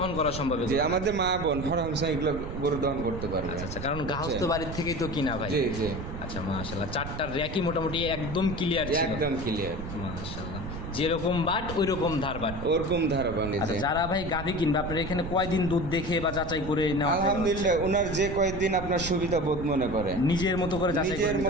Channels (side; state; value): right; noise; rumble, 8 dB below the sound